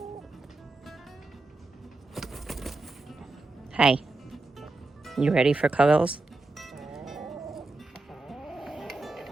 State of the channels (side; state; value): left; quieter; 3.1 dB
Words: Hi. You ready for cuddles?